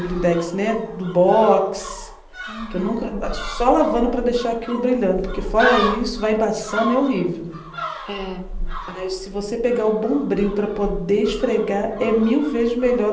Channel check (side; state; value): both; identical; correlation 1.00